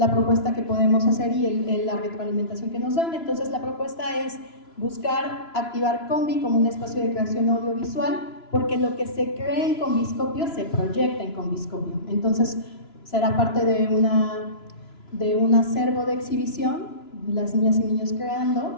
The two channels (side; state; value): right; late; 2.9 ms